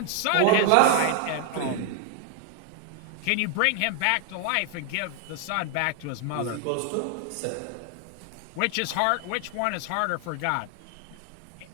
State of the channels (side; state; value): both; different; correlation 0.00